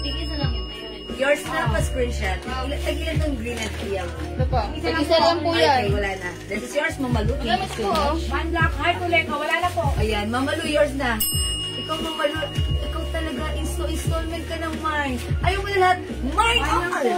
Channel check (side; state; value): both; identical; correlation 1.00